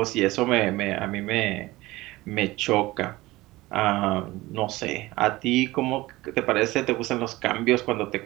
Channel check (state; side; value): quieter; left; 19.2 dB